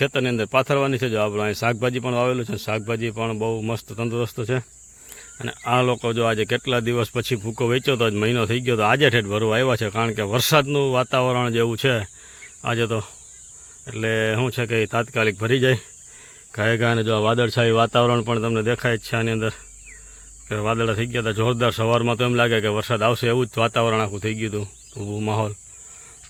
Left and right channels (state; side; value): identical; both; correlation 1.00